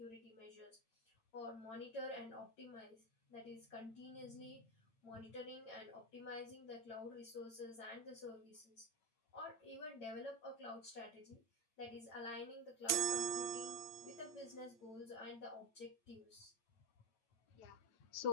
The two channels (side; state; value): right; late; 9.0 ms